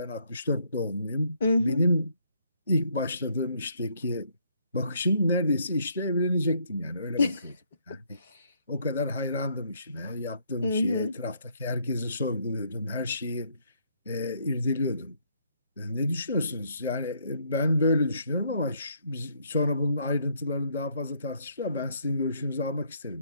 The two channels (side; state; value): both; inverted; correlation -0.69